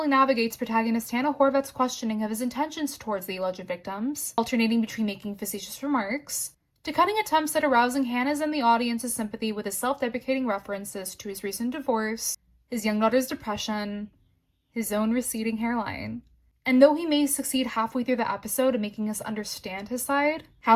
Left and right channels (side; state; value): both; identical; correlation 1.00